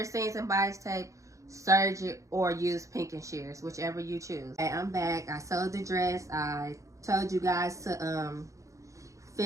seams in bias tape, serge it, or use pinking shears, whichever you choose. Okay, I'm back. I sewed the dress. I told you guys to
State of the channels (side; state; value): left; late; 0.15 ms